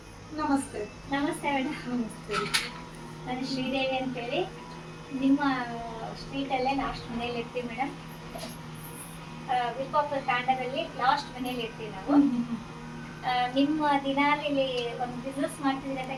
ನಮಸ್ತೆ. ನಮಸ್ತೆ ಮೇಡಮ್. ನಮಸ್ತೆ. ನಾನು ಶ್ರೀದೇವಿ ಅಂತೇಳಿ ನಿಮ್ಮ ಸ್ಟ್ರೀಟಲ್ಲೇ ಲಾಸ್ಟ್ ಮನೇಲಿ ಇರ್ತೀವಿ ಮೇಡಮ್. ವಿಪ್ಪಾಪುರ ತಾಂಡದಲ್ಲಿ ಲಾಸ್ಟ್ ಮನೇಲಿ ಇರ್ತೀವಿ ನಾವು. ನಿಮ್ಮ ದಿನಾಲಿ ಒಂದು ಬಿಸ್ನೆಸ್ ಮಾಡ್ತಿದ್ದೀರಿ ಅಂತ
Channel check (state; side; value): identical; both; correlation 1.00